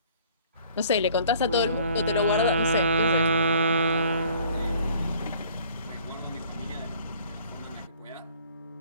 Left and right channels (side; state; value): both; inverted; correlation -0.55